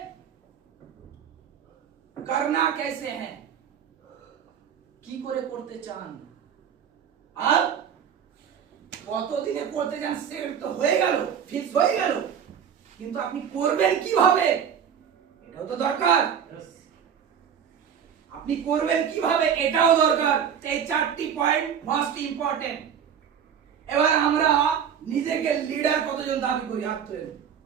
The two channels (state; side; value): quieter; left; 8.1 dB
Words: करना कैसे है কি করে করতে চান আর কতদিনে করতে চান সেট তো হয়ে গেল ফিক্স হয়ে গেল কিন্তু আপনি করবেন কিভাবে এটাও তো দরকার আপনি করবেন কিভাবে এটাও দরকার এই চারটি পয়েন্ট মোস্ট ইম্পর্টেন্ট এবার আমরা নিজেকে লিডার কতজন দাবি করি হাত তুলে